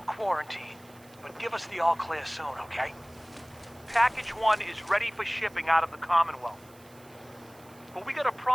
quarantine, but give us the all clear soon, okay? Package 1 is ready for shipping out of the Commonwealth. But we got a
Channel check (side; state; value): right; noise; hiss, 26 dB below the sound